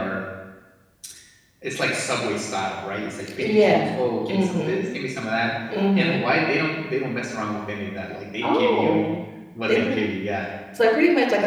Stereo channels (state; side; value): identical; both; correlation 1.00